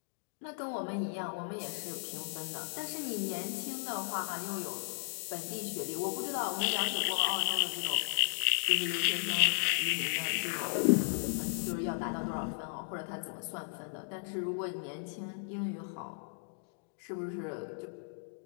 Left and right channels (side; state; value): right; silent; digital silence